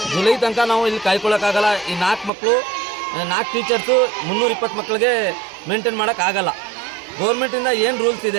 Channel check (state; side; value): drops out; left; at 2.3 s